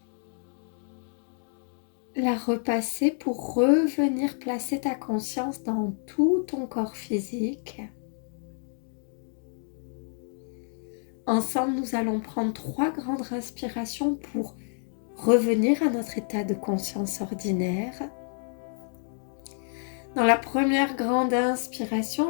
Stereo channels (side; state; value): right; silent; 59 dB below the other